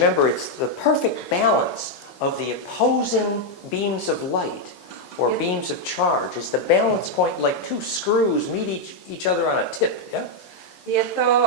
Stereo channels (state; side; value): late; right; 16 ms